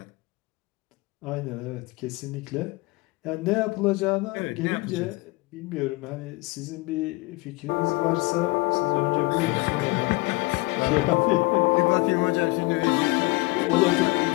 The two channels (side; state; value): right; quieter; 23.4 dB